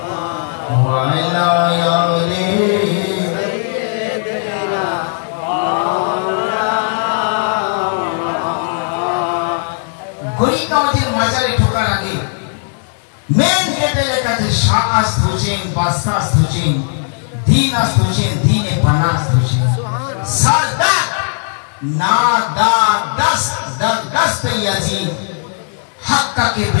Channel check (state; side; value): silent; right; digital silence